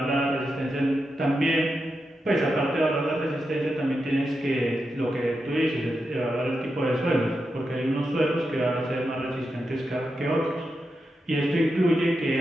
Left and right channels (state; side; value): normal; both; correlation 0.87